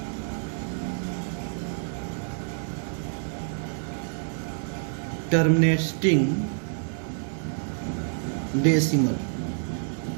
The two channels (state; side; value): silent; left; digital silence